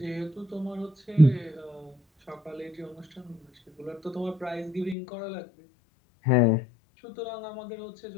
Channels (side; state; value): right; drops out; at 5.0 s